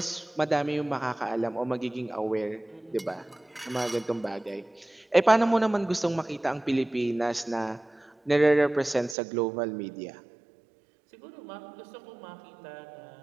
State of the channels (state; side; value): drops out; left; at 9.2 s